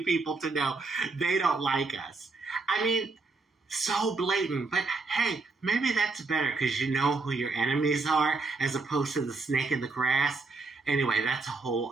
people to know they don't like us. I mean, so blatant. But hey, maybe that's better because you know who your enemies are as opposed to the snake in the grass. Anyway, that's a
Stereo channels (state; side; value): quieter; left; 3.8 dB